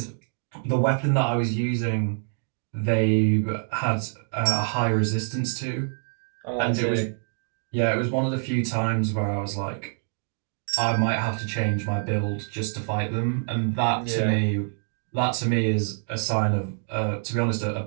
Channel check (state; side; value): silent; left; 61 dB below the other